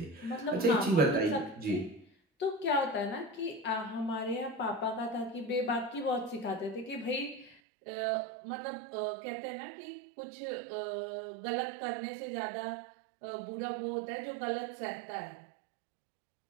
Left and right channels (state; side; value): drops out; left; at 7.6 s